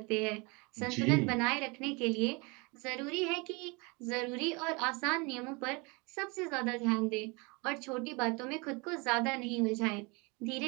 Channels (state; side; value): quieter; left; 28.3 dB